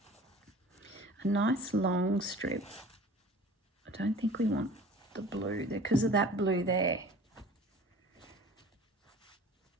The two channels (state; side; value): normal; both; correlation 0.44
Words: A nice long strip. I don't think we want the blue there because of that blue there.